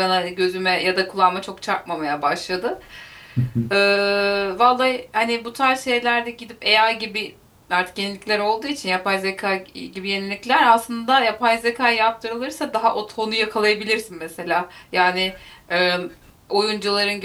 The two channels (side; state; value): both; identical; correlation 1.00